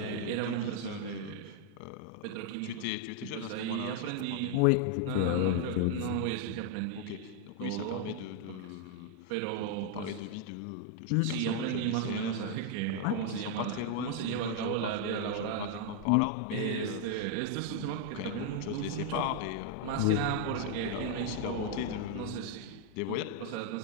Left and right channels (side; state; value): both; different; correlation 0.00